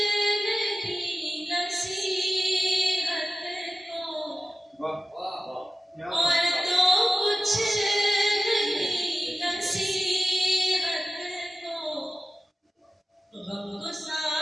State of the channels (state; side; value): normal; both; correlation 0.94